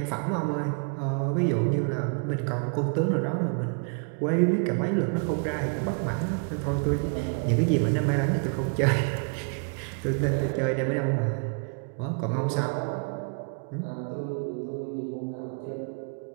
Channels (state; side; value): quieter; left; 39.8 dB